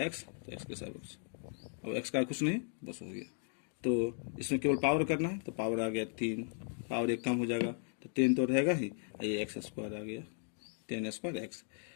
एक्स, तो एक्स के सापेक्ष, अब एक्स का कुछ नहीं, बस हो गया। तो इसमें केवल पावर करना है, तो पावर आ गया 3, पावर 1 कम हो जाएगा तो 10 तो रहेगा ही, ये एक्स स्क्वायर आ गया 10 स्क्वायर एक्स,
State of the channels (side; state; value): right; silent; 53 dB below the other